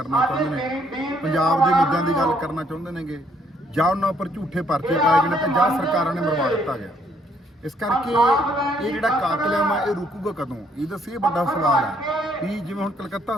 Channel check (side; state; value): both; normal; correlation 0.68